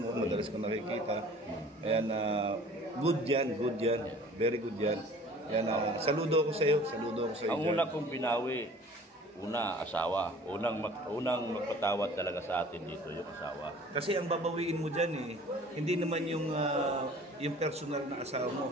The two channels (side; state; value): both; normal; correlation 0.48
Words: madalas ko nakikita. Ayan, good yan. Very good yan. Yan, saludo ko sa iyo. Ang una kong binawi, asawa. Unang magpatawad talaga sa atin dito, yung asawa. Kasi ang babawiin mo dyan hindi naman yung personal na asawa mo,